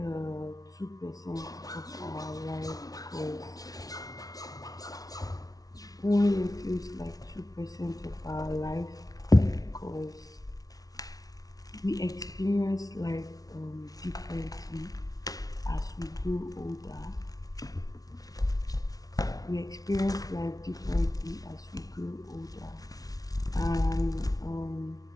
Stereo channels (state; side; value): late; right; 0.18 ms